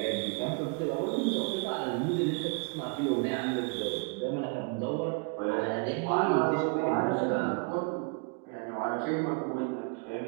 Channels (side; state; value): left; quieter; 33.7 dB